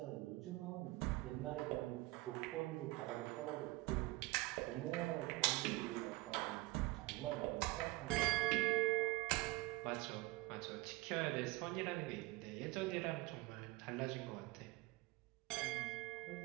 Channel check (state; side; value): quieter; left; 21.4 dB